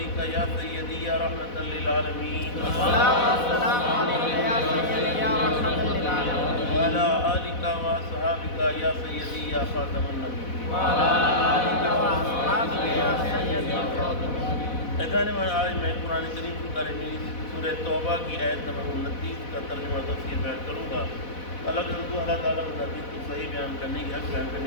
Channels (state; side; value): late; right; 4.1 ms